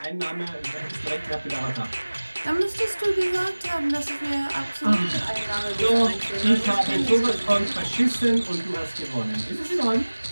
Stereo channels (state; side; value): inverted; both; correlation -1.00